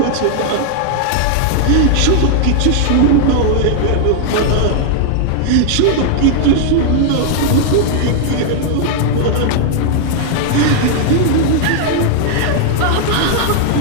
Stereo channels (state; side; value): different; both; correlation -0.01